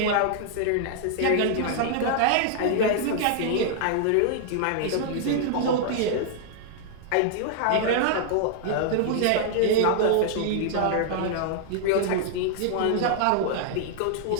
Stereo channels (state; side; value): different; both; correlation -0.01